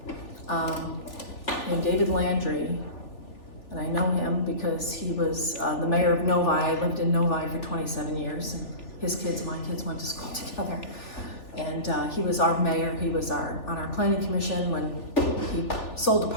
named David Landry. And I know him because he was the mayor of Novi. I lived in Novi for 27 years. And my kids went to school together. And he was our mayor. He was on our planning commission when he sold the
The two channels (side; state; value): right; late; 3.4 ms